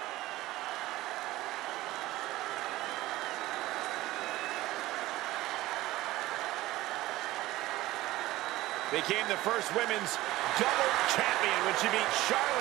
Became the first women's double champion when she beat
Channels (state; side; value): quieter; left; 17.2 dB